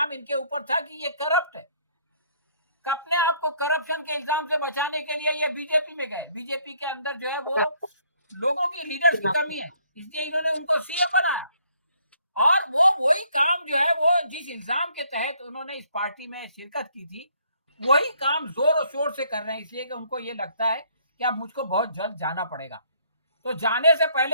इनके ऊपर था कि ये करप्ट है। अपने आप को करप्शन के इल्जाम से बचाने के लिए ये बीजेपी में गए। बीजेपी के अंदर जो है वो लोगों की लीडर्स की कमी है, इसलिए इन्होंने उनको सीएम बनाया। और वो वही काम जो है वो जिस इल्जाम के तहत उन्होंने इस पार्टी में शिरकत की थी, वही काम जोर और शोर से कर रहे हैं, इसलिए कि उनको ये लगता है कि अब मुझको बहुत जल्द जाना पड़ेगा। तो जाने से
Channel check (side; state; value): both; inverted; correlation -0.65